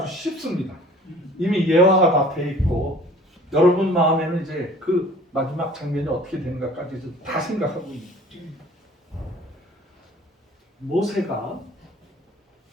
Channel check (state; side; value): normal; both; correlation 0.49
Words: 쉽습니다. 이미 예화가 다 돼 있고 여러분 마음에는 이제 그 마지막 장면이 어떻게 되는가까지 다 생각하고 있습니다. 모세가